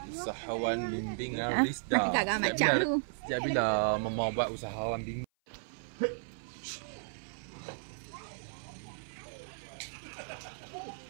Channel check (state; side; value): silent; left; 55 dB below the other